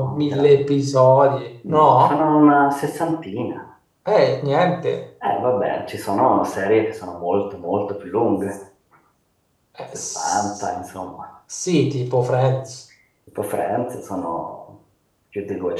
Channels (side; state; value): both; identical; correlation 1.00